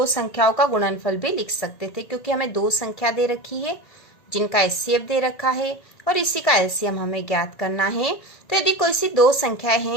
संख्याओं का गुणनफल भी लिख सकते थे, क्योंकि हमें दो संख्या दे रखी है जिनका HCF दे रखा है और इसी का LCM हमें ज्ञात करना है। तो यदि कोई सी दो संख्याएं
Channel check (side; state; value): right; late; 1.7 ms